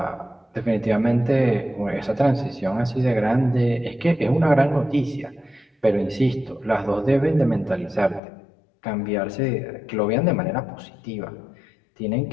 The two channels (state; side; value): drops out; right; at 8.2 s